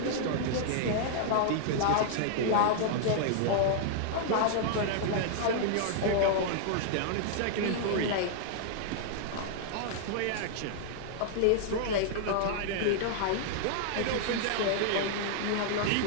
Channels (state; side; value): different; both; correlation -0.01